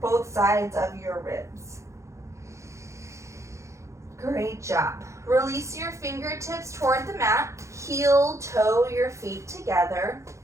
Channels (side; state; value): left; late; 0.14 ms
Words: sides of your ribs. Great job. Release your fingertips toward the mat. Heel, toe your feet together.